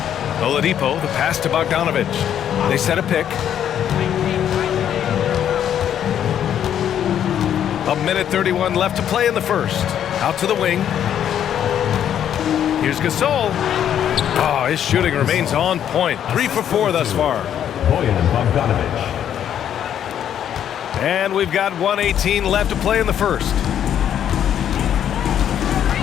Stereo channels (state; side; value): quieter; right; 9.8 dB